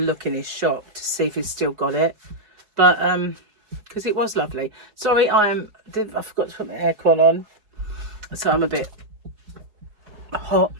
in his shop to see if he's still got it. But, because it was lovely. Sorry, I forgot to put my aircon on. So I'm a bit hot,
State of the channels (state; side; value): late; left; 4.6 ms